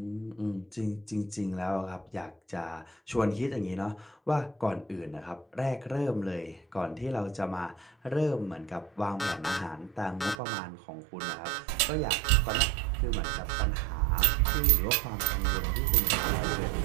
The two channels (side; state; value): left; drops out; at 10.4 s